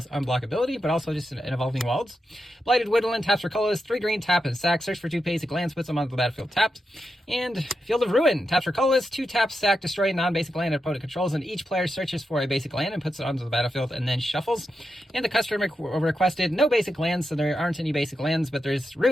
unblockability, but also just an Evolving Wilds. Blighted Woodland, taps for colorless, 3 green, tap and sack. Search for 2 basic lands, puts them onto the battlefield tapped. And Field of Ruin, taps for colorless, 2 taps, sack, destroy a non-basic land opponent controls, and each player searches for a basic land and puts it onto the battlefield and then shuffles. And the customer requested no basic lands, so there aren't any basic lands, but there's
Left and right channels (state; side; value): normal; both; correlation 0.87